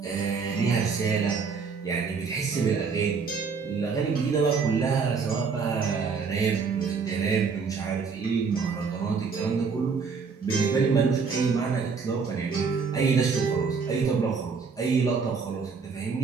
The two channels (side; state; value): left; quieter; 5.3 dB